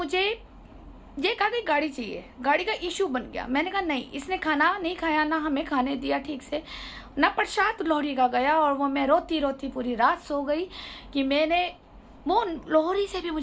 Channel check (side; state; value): both; identical; correlation 1.00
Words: ये कहा कि गाड़ी चाहिए, गाड़ी का इशू बन गया। मैंने कहा नहीं, इसने खाना नहीं खाया, ना हमें खाने दिया ठीक से, ना प्रसाद लोहड़ी का गया। और वो मैं रोती रोती पूरी रात सो गई कि मैंने वो लोहड़ी से भी